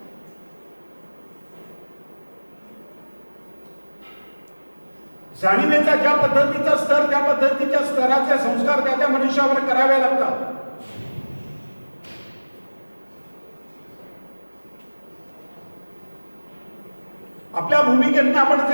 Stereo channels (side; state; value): both; inverted; correlation -1.00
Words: जाणीवेचा ज्या पद्धतीचा स्तर त्या पद्धतीच्या स्तराचे संस्कार त्या त्या मनुष्यावर करावे लागतात. आपल्या भूमिकेतून आपण